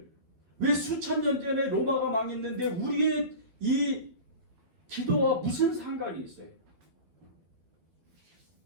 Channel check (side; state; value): left; late; 12 ms